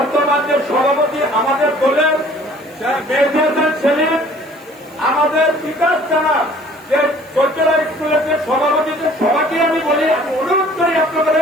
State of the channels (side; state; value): right; noise; hiss, 29 dB below the sound